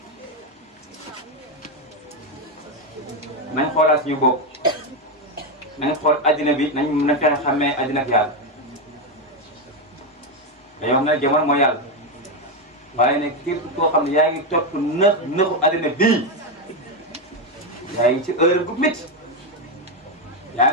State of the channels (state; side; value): normal; both; correlation 0.08